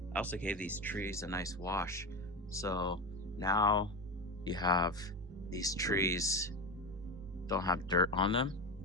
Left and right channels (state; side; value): normal; both; correlation 0.20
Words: I also gave these trees a nice wash. So now you have these trees don't have dirt on them,